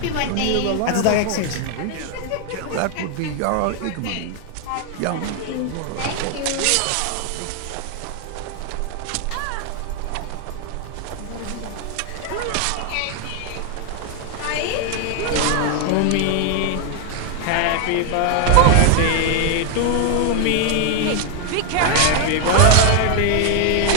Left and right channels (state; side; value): different; both; correlation 0.00